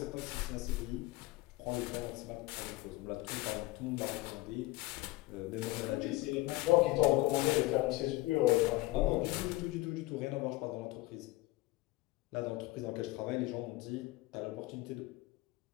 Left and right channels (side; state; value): right; quieter; 19.3 dB